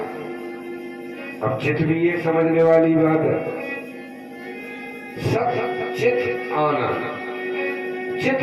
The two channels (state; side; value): identical; both; correlation 1.00